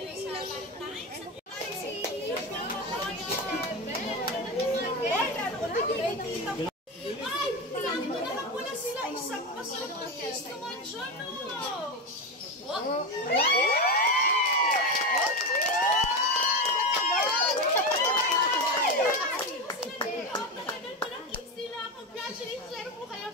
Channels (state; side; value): normal; both; correlation 0.18